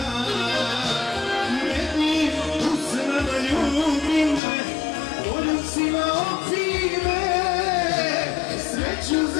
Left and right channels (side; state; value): right; drops out; at 4.4 s